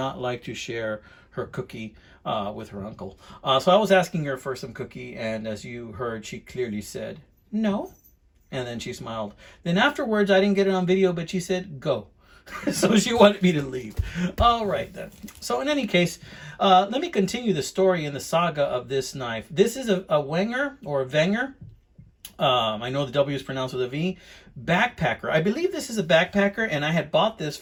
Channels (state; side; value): identical; both; correlation 1.00